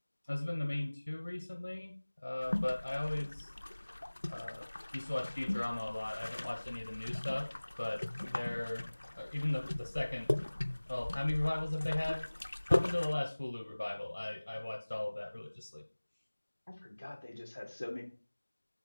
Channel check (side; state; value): both; inverted; correlation -1.00